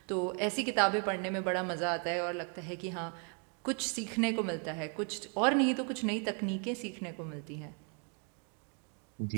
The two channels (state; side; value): quieter; left; 37.9 dB